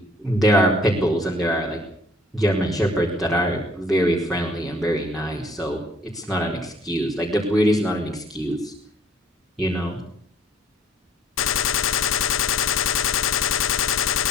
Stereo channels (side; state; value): both; normal; correlation 0.55